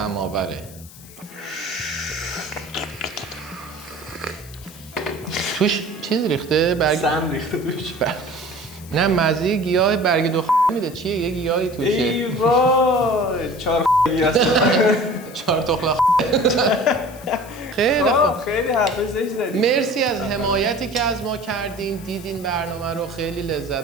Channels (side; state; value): left; noise; hiss, 20 dB below the sound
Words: توش چیز ریخته؟ سم ریخته توش. نه مزه گیاه برگ دو میده. چیه؟ یه گیاهی توشه. ای وای 4 هست. 4 تخلا خیلی خوب. خیلی حرف زشت زدی. مرسی از حمایتی که از ما کردین، دیدین برنامه رو، خیلی